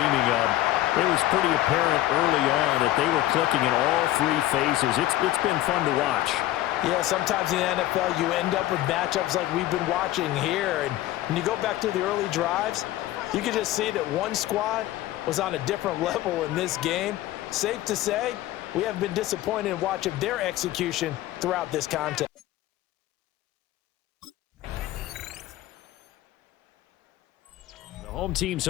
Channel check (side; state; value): right; quieter; 15.2 dB